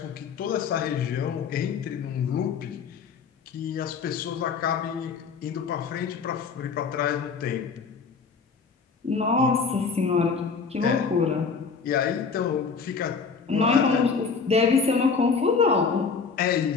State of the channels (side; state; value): right; quieter; 5.4 dB